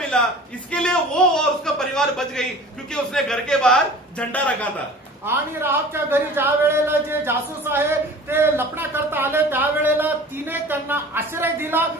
इसके लिए वो और उसका परिवार बच गई, क्योंकि उसने घर के बाहर झंडा रखा था। आणि राहाबच्या घरी ज्या वेळेला जे जासूस आहे ते लपण्या करता आले त्यावेळेला तिने त्यांना आश्रय दिला,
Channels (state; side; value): normal; both; correlation 0.43